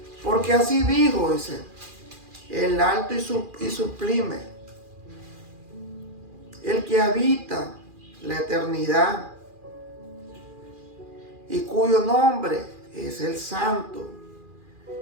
Porque así dijo, dice, el alto y sublime, el que habita la eternidad y cuyo nombre es el Santo.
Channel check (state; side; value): late; left; 2.4 ms